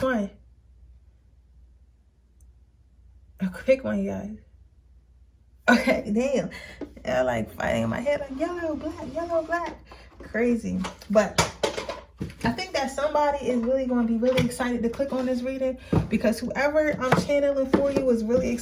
one? Pick one, you guys. Okay, damn. Yeah, like fighting in my head like yellow, black. Crazy. But I think that somebody is really going to be really excited to click on this reading because whoever I'm channeling for you is really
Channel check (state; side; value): identical; both; correlation 1.00